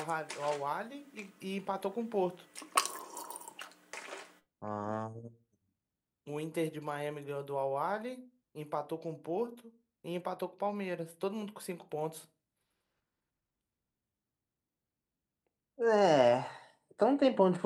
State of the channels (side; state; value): both; identical; correlation 1.00